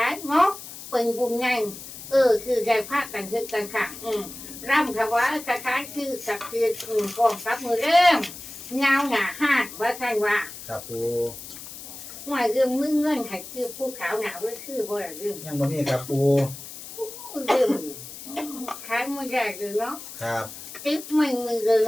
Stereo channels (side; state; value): left; noise; hiss, 13 dB below the sound